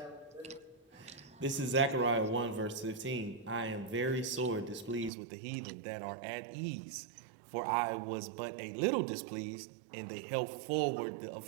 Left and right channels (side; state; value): left; drops out; at 5.1 s